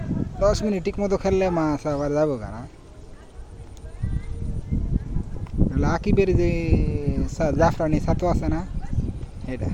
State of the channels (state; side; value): identical; both; correlation 1.00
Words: 10 মিনিট ঠিক মতো খেললে মাছ আবার যাবো কেনা আকিবের যে জাফরানি ছাতু আছে না এটা